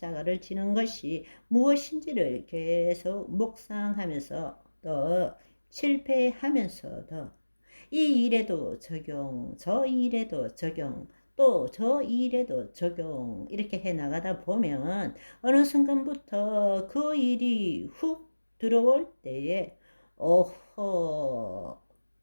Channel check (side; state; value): both; inverted; correlation -1.00